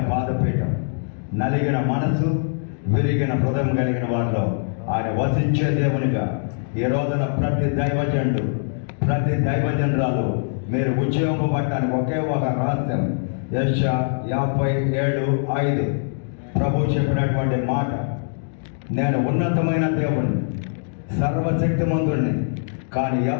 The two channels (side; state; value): right; silent; digital silence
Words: పాదపీఠం. నలిగిన మనసు విరిగిన హృదయం కలిగిన వారిలో ఆయన వసించే దేవునిగా ఈ రోజున ప్రతి దైవజనుడు ప్రతి దైవజనురాలు మీరు ఉద్యోగపడటానికి ఒకే ఒక రహస్యం. యెషయా 57:5 ప్రభు చెప్పినటువంటి మాట, నేను ఉన్నతమైన దేవుణ్ణి సర్వశక్తిమంతుడిని, కానీ